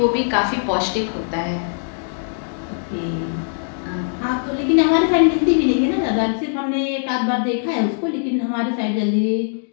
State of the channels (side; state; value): right; silent; digital silence